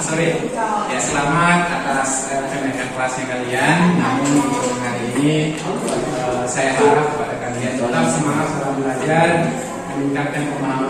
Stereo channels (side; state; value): both; identical; correlation 1.00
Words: Sorry. Ya, selamat atas kenaikan kelasnya kalian. Namun untuk hari ini saya harap kepada kalian tetap semangat dalam belajar, meningkatkan